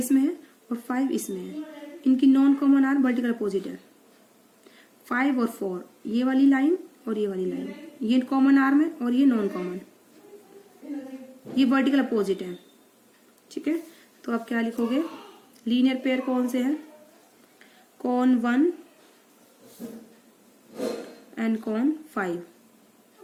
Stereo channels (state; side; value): identical; both; correlation 1.00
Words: है और 5 इसमें है, इनकी non common arm vertical opposite है। 5 और 4 ये वाली लाइन और ये वाली लाइन, ये कॉमन आर्म है और ये नॉन कॉमन, ये वर्टिकल अपोजिट है, ठीक है। तो आप क्या लिखोगे? लीनियर पेयर कौन से हैं? कॉन 1 एंड कॉन 5,